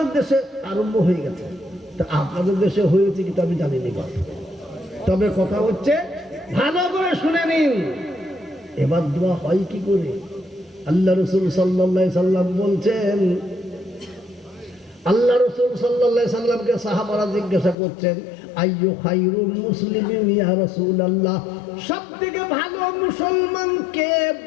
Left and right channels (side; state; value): right; drops out; at 17.8 s